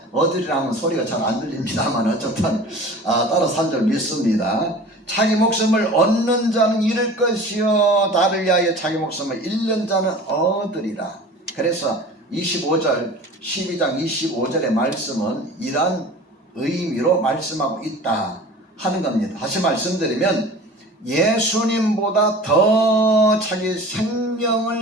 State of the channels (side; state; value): both; normal; correlation 0.40